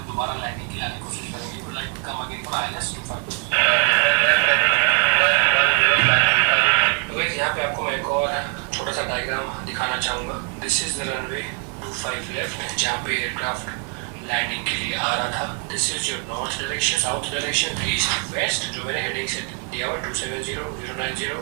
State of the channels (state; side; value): quieter; left; 35.0 dB